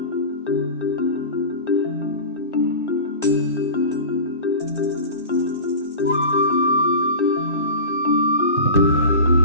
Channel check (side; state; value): both; inverted; correlation -0.32